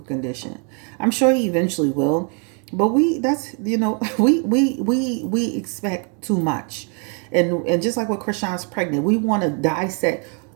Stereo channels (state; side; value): quieter; left; 38.8 dB